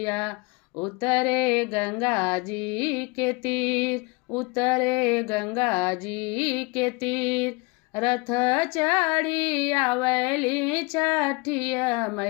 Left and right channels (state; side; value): quieter; right; 27.1 dB